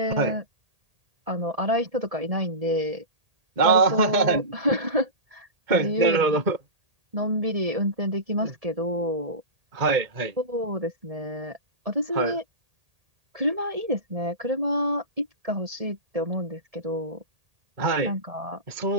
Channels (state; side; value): late; left; 1.8 ms